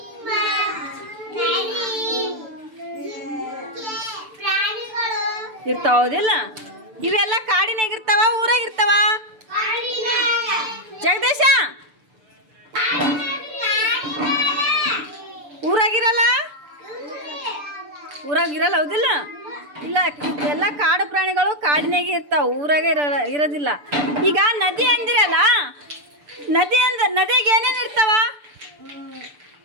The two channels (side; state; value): left; late; 6.8 ms